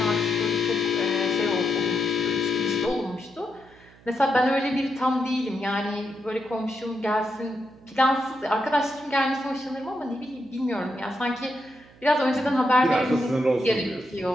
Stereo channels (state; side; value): noise; right; hum, 26 dB below the sound